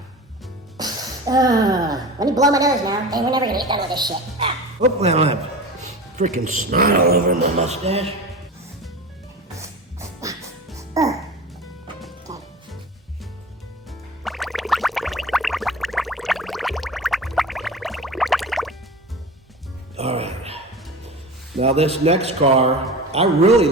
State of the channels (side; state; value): both; normal; correlation 0.32